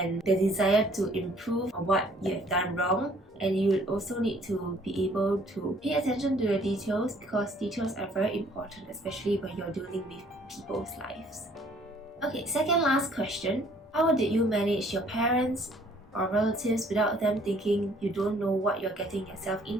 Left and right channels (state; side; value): normal; both; correlation 0.60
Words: the desire to improve on what you have done wrong, and you will also need to be able to pay attention to the details, because details are very important, especially when you're dealing with people's lives. Okay, second last question. How did you manage your parents or relatives without them thinking you don't know what you're getting yourself